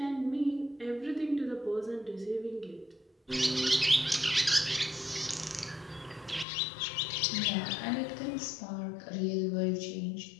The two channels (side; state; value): right; drops out; at 6.5 s